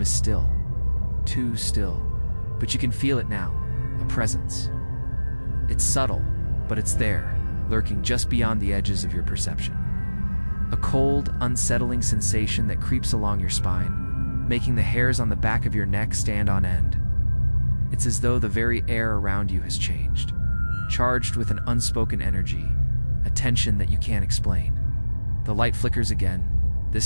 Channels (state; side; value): inverted; both; correlation -1.00